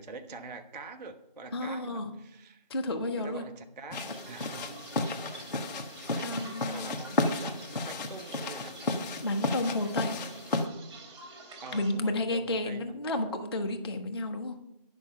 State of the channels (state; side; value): inverted; both; correlation -0.46